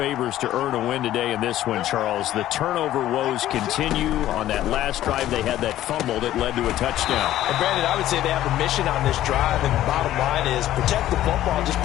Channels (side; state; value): right; quieter; 13.4 dB